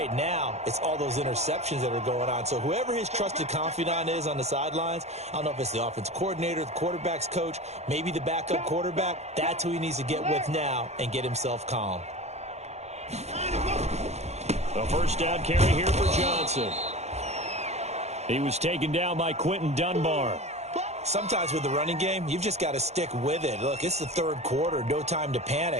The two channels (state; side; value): late; left; 0.32 ms